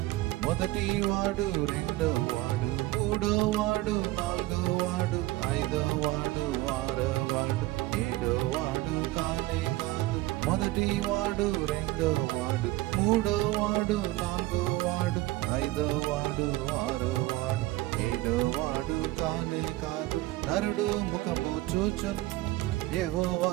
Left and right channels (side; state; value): left; quieter; 18.3 dB